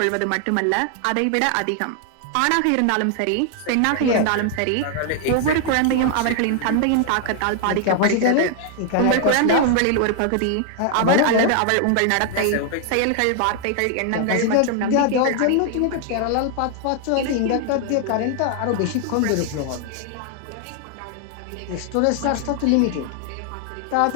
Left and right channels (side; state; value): both; different; correlation 0.00